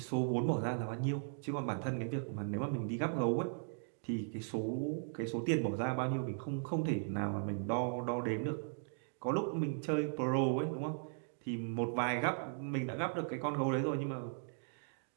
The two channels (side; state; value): left; silent; digital silence